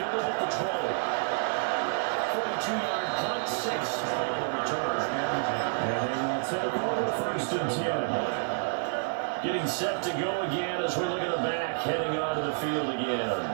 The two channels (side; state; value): left; silent; digital silence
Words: at the 20. 42-yard punt, 6 on the return. And they will take over 1st and 10. Getting set to go again as we look at the back, heading onto the field again.